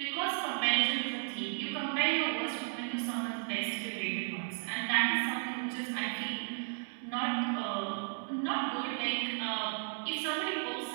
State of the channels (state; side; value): silent; left; digital silence